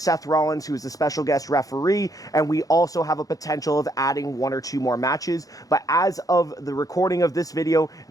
Rollins, who is the special guest referee, and we also have a potential of adding one or two more matches. But as of the recording of this video,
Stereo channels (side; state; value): right; late; 0.17 ms